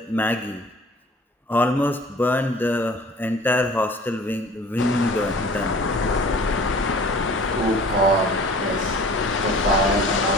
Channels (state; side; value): normal; both; correlation 0.46